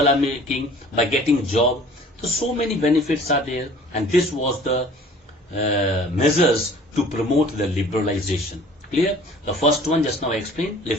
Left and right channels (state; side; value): normal; both; correlation 0.49